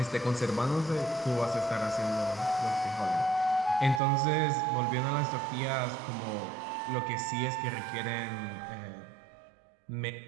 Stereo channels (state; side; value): drops out; left; at 4.0 s